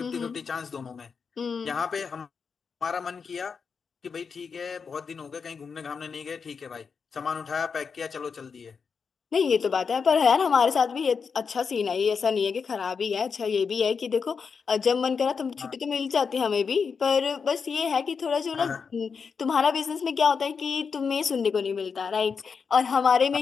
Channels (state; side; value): quieter; right; 5.7 dB